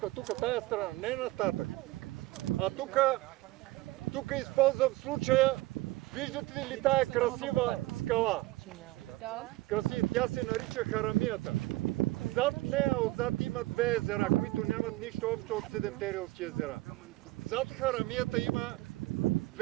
тая страна, не нататък. А тук използвам случая, виждате ли тая красива скала? Красива, тя се нарича Харамията. Зад нея, отзад има 2 езера, които нямат нищо общо от 7-те рилски езера. Зад Харамията има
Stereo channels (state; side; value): quieter; left; 19.0 dB